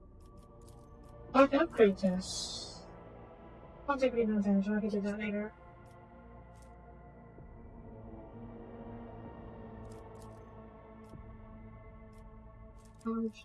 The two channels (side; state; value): both; identical; correlation 1.00